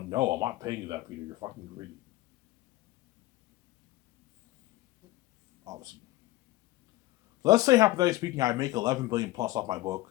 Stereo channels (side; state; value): right; quieter; 17.9 dB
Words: no, I'm not paying you that, Peter. You're fucking greedy. Obviously. Let's say, hypothetically speaking, I make 11 billion plus off my